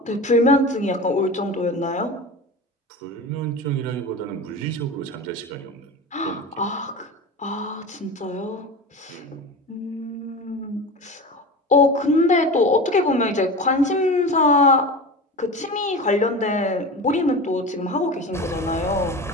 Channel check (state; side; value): normal; both; correlation 0.29